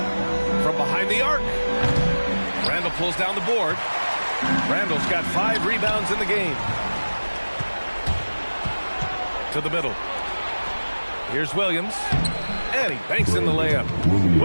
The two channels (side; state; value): both; inverted; correlation -1.00